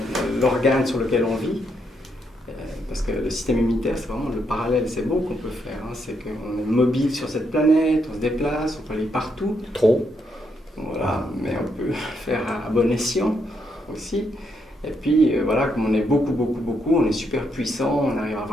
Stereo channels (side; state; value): both; normal; correlation 0.77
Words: l'organe sur lequel on vit. Parce que le système immunitaire, c'est vraiment le parallèle, c'est beau qu'on peut faire. C'est qu'on est mobile sur cette planète, on se déplace, on peut aller partout. Trop. Voilà, mais on peut faire à bon escient aussi. Et puis comme on est beaucoup, on est super puissant, on arrive à